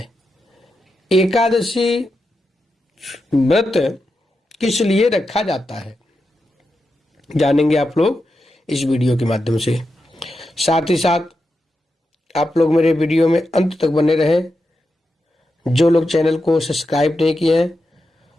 एकादशी व्रत किस लिए रखा जाता है, जानेंगे आप लोग इस वीडियो के माध्यम से। साथ ही साथ आप लोग मेरे वीडियो में अंत तक बने रहें। जो लोग चैनल को सब्सक्राइब नहीं किए हैं,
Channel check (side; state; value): both; normal; correlation 0.88